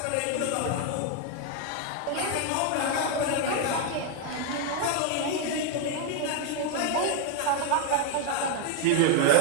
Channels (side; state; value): both; different; correlation 0.00